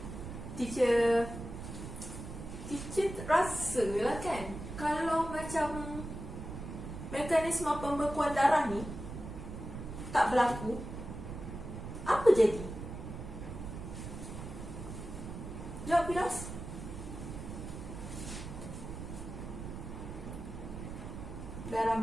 Teacher rasa lah kan, kalau macam mekanisme pembekuan darah ni tak berlaku, apa jadi? Jawab, Firaus. Darah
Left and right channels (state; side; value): noise; right; rumble, 8 dB below the sound